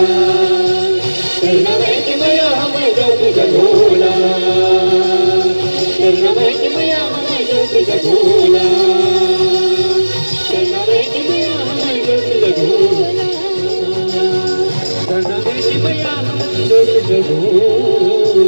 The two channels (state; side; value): inverted; both; correlation -1.00